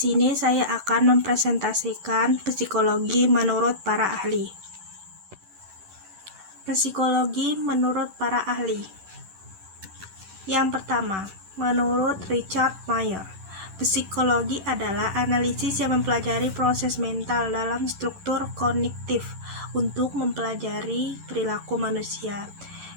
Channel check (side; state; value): left; late; 10 ms